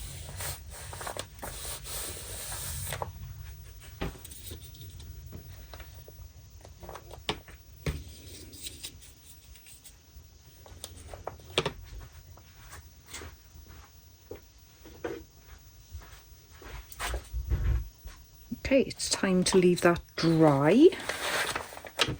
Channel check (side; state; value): both; identical; correlation 1.00